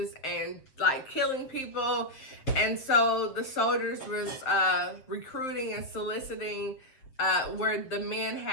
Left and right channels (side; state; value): right; late; 7.6 ms